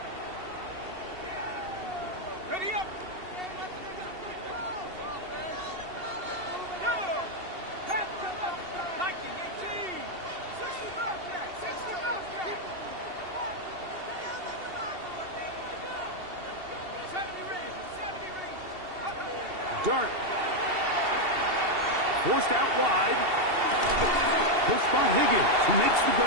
Ready up. Dart. Forced out wide. He'll spot Higgins, who makes the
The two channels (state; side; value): late; left; 2.7 ms